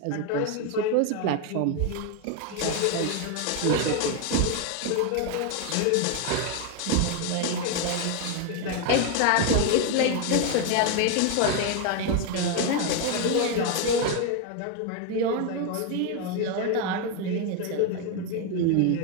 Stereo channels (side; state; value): both; different; correlation 0.01